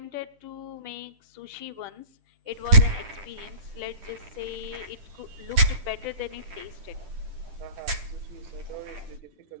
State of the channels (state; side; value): late; left; 10 ms